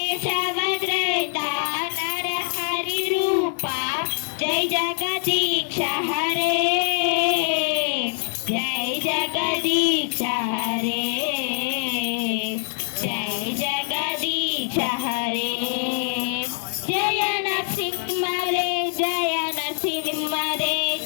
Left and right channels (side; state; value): right; silent; 63 dB below the other